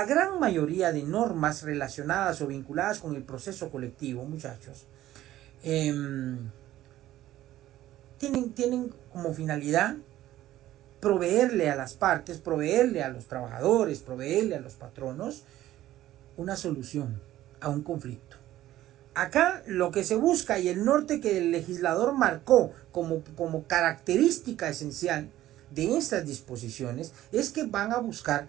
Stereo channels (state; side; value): quieter; left; 14.2 dB